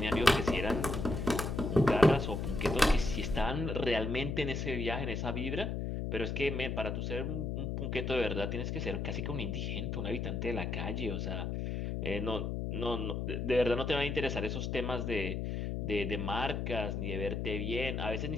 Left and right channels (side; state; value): left; noise; hum, 2 dB below the sound